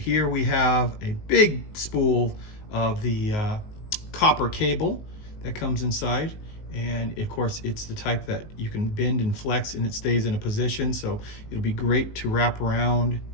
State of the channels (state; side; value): late; right; 19 ms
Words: we have a big spool of the copper cable that comes inside. And of course, it's the type that you can bend and flex and it stays in a position. So it'll be great to wrap around